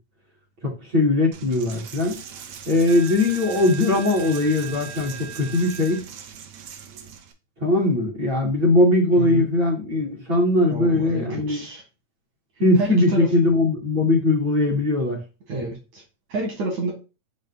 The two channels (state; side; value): late; left; 8.8 ms